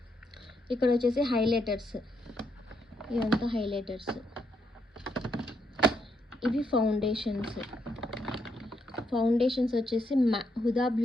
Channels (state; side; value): normal; both; correlation 0.77